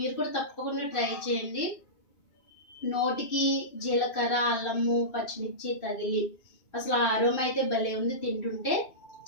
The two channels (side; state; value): right; late; 2.6 ms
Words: కూడా తప్పకుండా ట్రై చేయండి. నోటికి జీలకర్ర అల్లము పచ్చిమిర్చి తగిలి అసలు ఆరోమ అయితే భలే ఉంది. తింటుంటే